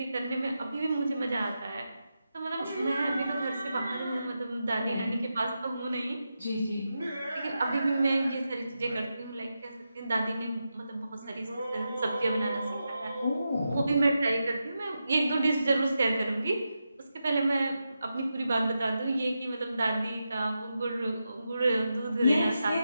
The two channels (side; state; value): both; inverted; correlation -0.88